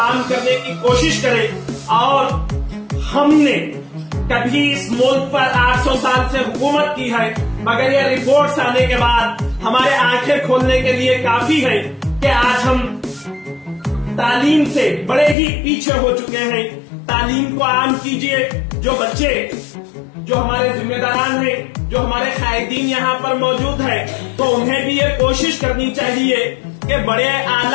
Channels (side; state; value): right; drops out; at 15.4 s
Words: करने की कोशिश करें। और हमने कभी इस मुल्क पर 800 साल से हुकूमत की है, मगर ये रिपोर्ट्स आने के बाद हमारे आंखें खोलने के लिए काफी है कि आज हम तालीम से बड़े ही पीछे हो चुके हैं। तालीम को आम कीजिए। जो बच्चे, जो हमारे जिम्मेदारान हैं, जो हमारे कायदीन यहाँ पर मौजूद है, तो उन्हें भी ये कोशिश करनी चाहिए कि बड़े